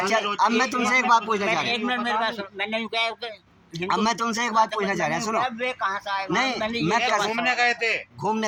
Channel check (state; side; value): identical; both; correlation 1.00